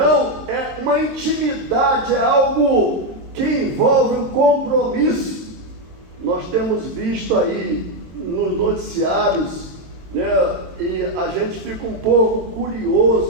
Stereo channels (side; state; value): left; late; 22 ms